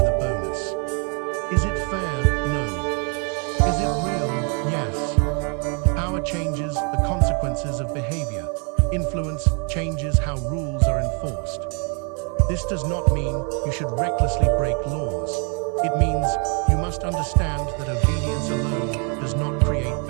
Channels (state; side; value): quieter; left; 36.5 dB